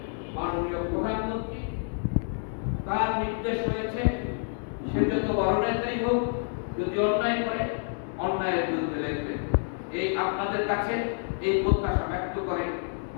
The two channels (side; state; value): right; silent; 59 dB below the other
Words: মাননীয় প্রধানমন্ত্রী তার নির্দেশ হয়েছে, সে যত বড় নেতাই হোক, যদি অন্যায় করে অন্যায়ের বিরুদ্ধে লড়বে। এই আপনাদের কাছে এই প্রত্যাশা ব্যক্ত করে